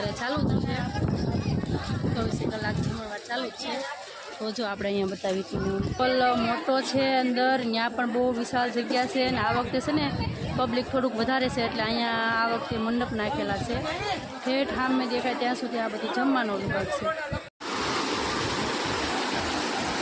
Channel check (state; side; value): identical; both; correlation 1.00